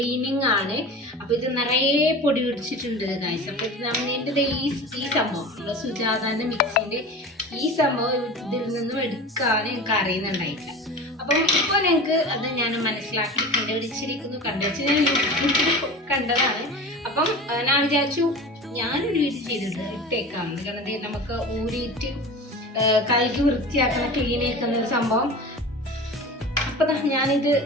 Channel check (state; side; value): normal; both; correlation 0.33